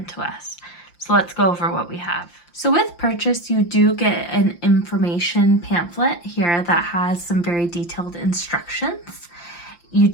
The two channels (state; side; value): late; right; 5.8 ms